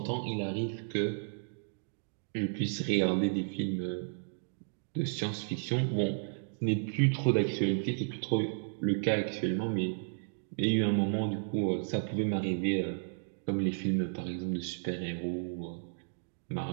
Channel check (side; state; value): left; silent; digital silence